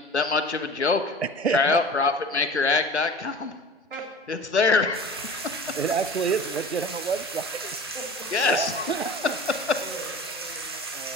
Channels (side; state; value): both; normal; correlation 0.39